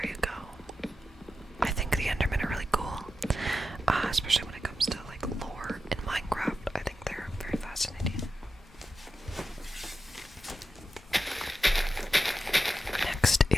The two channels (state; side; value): normal; both; correlation 0.90